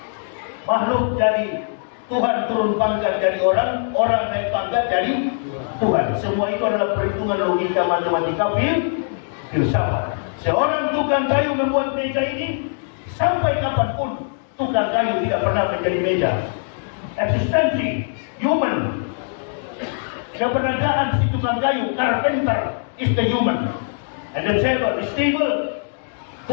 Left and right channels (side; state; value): right; silent; digital silence